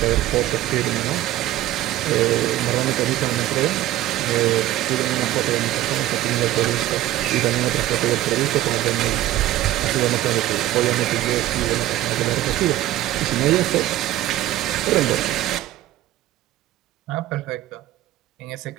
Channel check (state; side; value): quieter; left; 14.6 dB